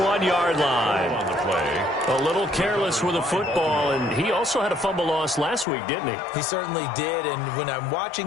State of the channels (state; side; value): drops out; right; at 5.7 s